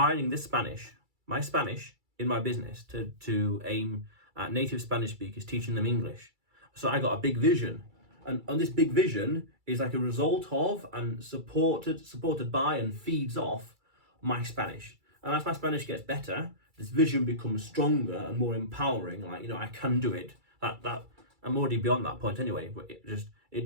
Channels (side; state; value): left; late; 2.3 ms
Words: this Spanish, my Spanish, in my business to aim at native Spanish speakers, teaching them English. So I got a big vision. And this big vision is like a result of and supported by and feeds off my Spanish. And as my Spanish gets better, this vision becomes stronger and more empowering. Like, I can do it. That I'm already beyond that point anyway, but